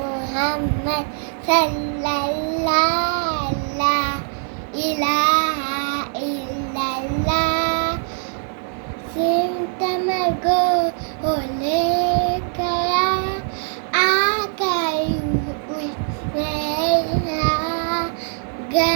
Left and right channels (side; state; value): left; silent; 60 dB below the other